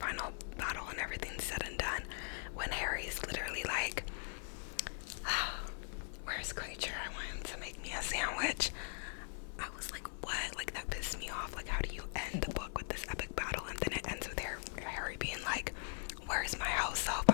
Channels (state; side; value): silent; right; digital silence